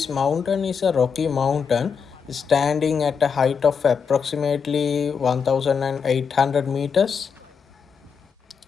mountain is a rocky mountain standing at a height of approximately 1800 meters.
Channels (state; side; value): quieter; right; 6.3 dB